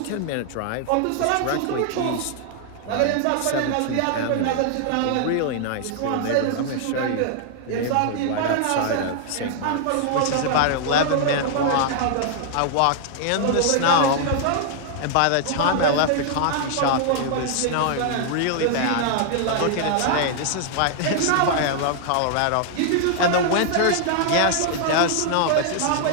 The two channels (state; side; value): different; both; correlation -0.01